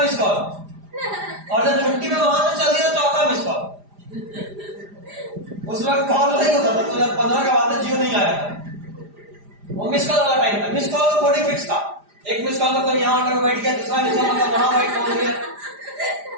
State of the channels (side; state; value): left; late; 4.9 ms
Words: मिस कॉल, और जब छुट्टी में वहां से चल दिया 4था मिस कॉल। उस वक्त कॉल नहीं होता था, 2015 का बात है, जियो नहीं आया था, वो मिस कॉल वाला टाइम था। मिस कॉल का कोडिंग फिक्स था, 1 मिस कॉल मतलब यहाँ आकर बैठ गया, 2रा मिस कॉल मतलब वहां बैठ पहुंच गया,